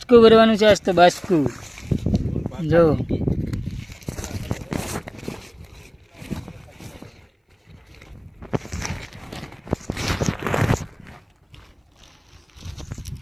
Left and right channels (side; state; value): both; identical; correlation 1.00